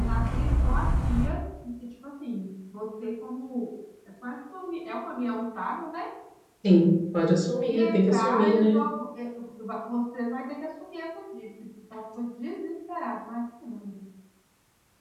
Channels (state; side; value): identical; both; correlation 1.00